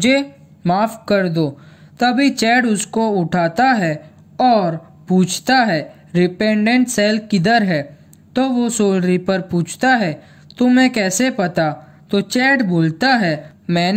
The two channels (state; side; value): identical; both; correlation 1.00